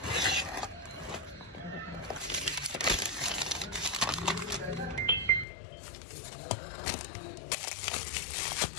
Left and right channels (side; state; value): right; drops out; at 5.5 s